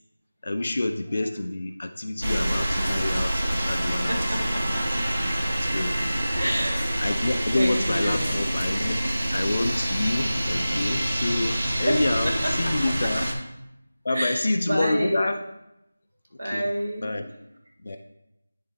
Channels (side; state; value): both; inverted; correlation -0.96